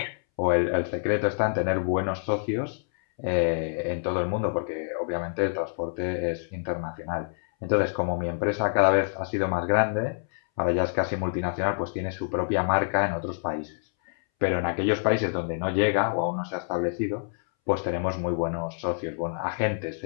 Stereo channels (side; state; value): right; silent; 60 dB below the other